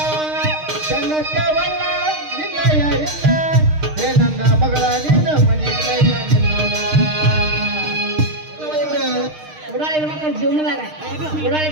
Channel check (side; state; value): left; late; 6.5 ms